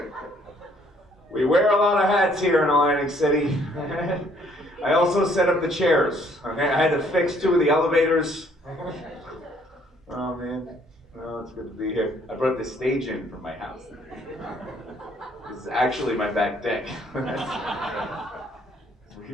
We wear a lot of hats here in Atlantic City. I also set up the chairs. Okay, I had to fix 2 of the elevators. Oh man, oh, it's good to be here. I brought the stage in from my house. This is actually my back deck.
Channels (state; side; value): normal; both; correlation 0.64